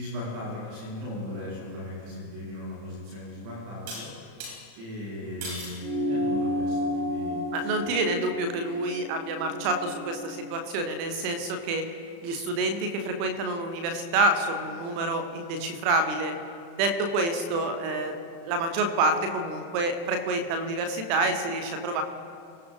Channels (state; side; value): late; left; 35 ms